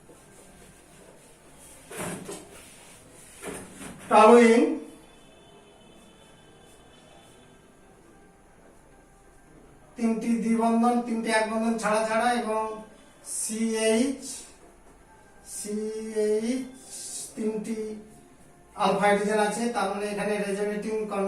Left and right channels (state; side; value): identical; both; correlation 1.00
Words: টলুইন তিনটি দ্বিবন্ধন, তিনটি এক বন্ধন ছাড়া ছাড়া, এবং CH তিনটি আলফা হাইড্রোজেন আছে, তার মানে এখানে রেজোনেটিং